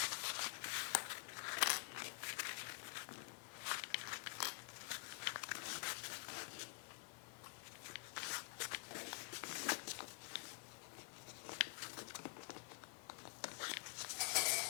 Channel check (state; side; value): quieter; right; 29.2 dB